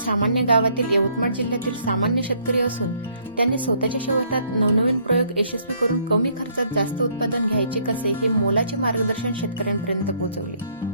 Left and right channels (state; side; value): inverted; both; correlation -0.66